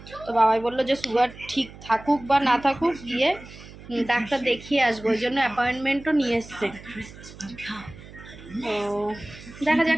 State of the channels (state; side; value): noise; right; hum, 17 dB below the sound